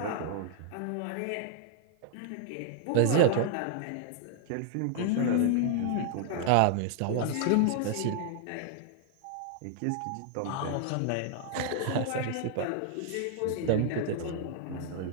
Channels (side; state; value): both; different; correlation -0.01